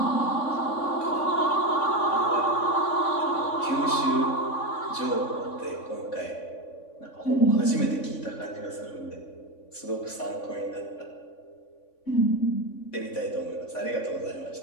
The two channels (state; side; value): late; right; 3.5 ms